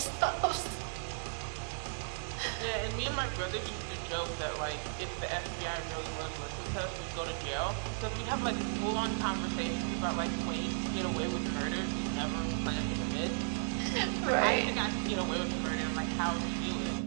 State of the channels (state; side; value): silent; left; digital silence